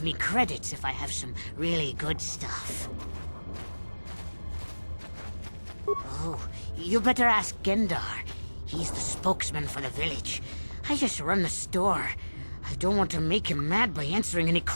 me credits if I have some really good stuff. Oh, you better ask Gendar. He's the spokesman for the village. I just run the store. I don't want to make him mad by answering any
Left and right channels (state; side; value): inverted; both; correlation -1.00